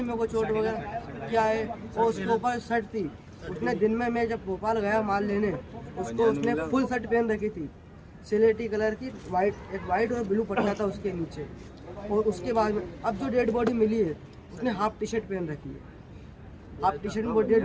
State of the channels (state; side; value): identical; both; correlation 1.00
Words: मेरे को चोट वगैरह क्या है। और उसके ऊपर शर्ट थी, उसने दिन में मैं जब भोपाल गया माल लेने, उसको उसने फुल शर्ट पहन रखी थी, सिलेटी कलर की, एक वाइट और ब्लू पट्टा था उसके नीचे। और उसके बाद में अब जो डेड बॉडी मिली है, उसने हाफ टी शर्ट पहन रखी है, हाफ टी शर्ट में डेड